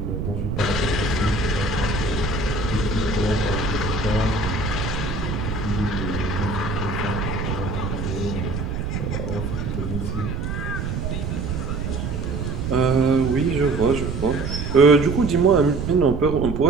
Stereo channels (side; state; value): right; noise; rumble, 3 dB below the sound